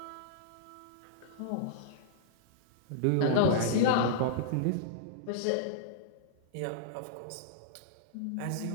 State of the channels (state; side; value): different; both; correlation -0.02